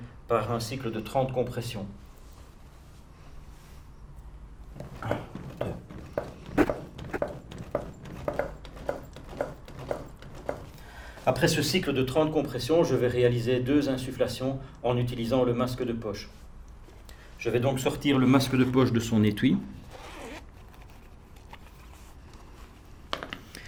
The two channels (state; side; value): identical; both; correlation 1.00